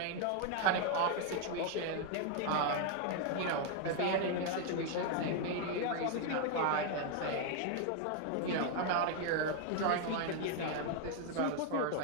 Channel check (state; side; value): different; both; correlation 0.01